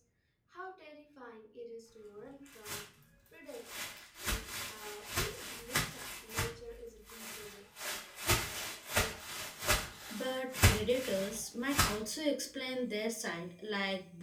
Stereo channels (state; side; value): identical; both; correlation 1.00